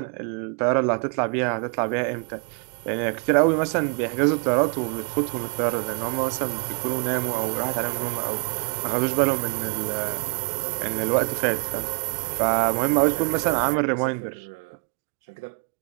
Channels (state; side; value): quieter; left; 39.2 dB